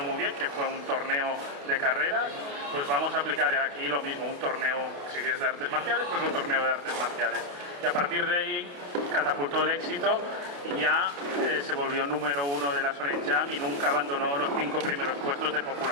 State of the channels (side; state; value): left; late; 28 ms